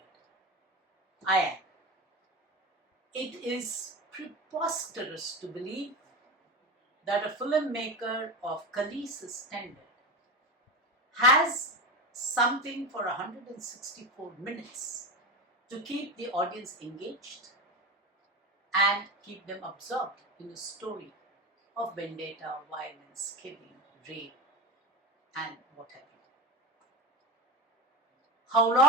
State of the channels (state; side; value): normal; both; correlation 0.22